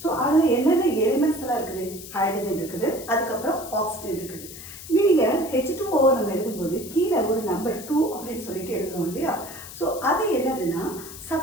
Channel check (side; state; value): left; noise; hiss, 13 dB below the sound